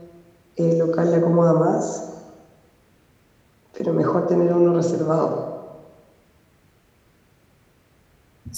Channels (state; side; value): identical; both; correlation 1.00